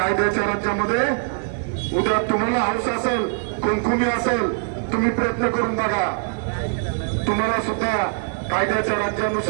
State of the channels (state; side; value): silent; left; digital silence